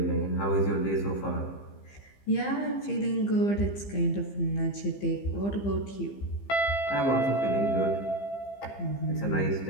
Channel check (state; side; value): late; right; 15 ms